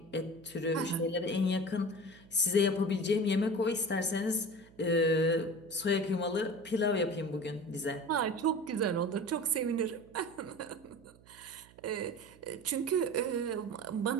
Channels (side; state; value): right; noise; hum, 25 dB below the sound